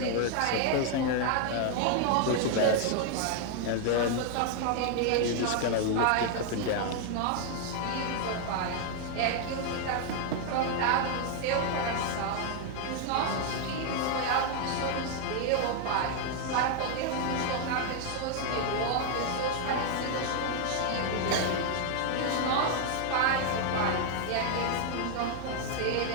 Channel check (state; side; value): different; both; correlation 0.00